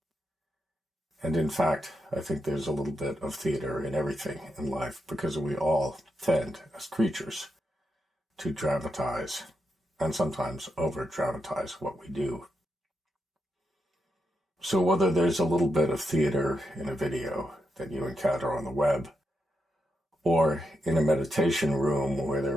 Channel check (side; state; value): both; normal; correlation 0.84